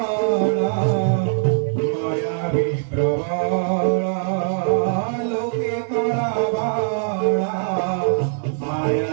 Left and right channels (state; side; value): silent; left; digital silence